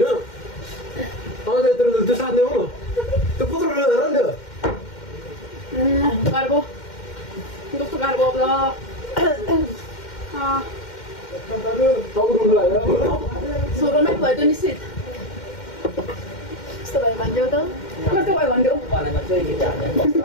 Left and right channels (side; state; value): right; late; 2.1 ms